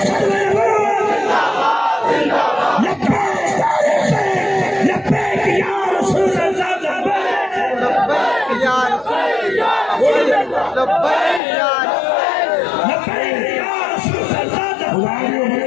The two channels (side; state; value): right; drops out; at 11.4 s